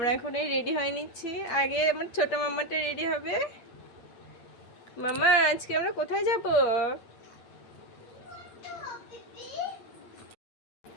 এখন এই রেডি হয়ে নিচ্ছি। আগে আমার ছোট মাম্মাটা রেডি হবে। মামা আজকে আমরা কোথায় যাব?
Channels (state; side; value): late; right; 8.5 ms